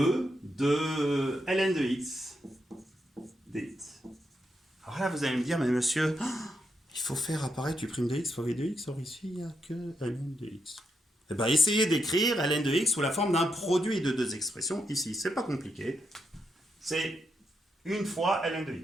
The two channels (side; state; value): both; normal; correlation 0.81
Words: de ln de x dx. Alors là, vous allez me dire, mais monsieur, il il faut faire apparaître u' de x fois v de x, or ici, il n'y a que ln de x. Eh bien, essayez d'écrire ln de x sous la forme d'un produit de deux expressions, ici. C'est pas compliqué. C'est une fois ln de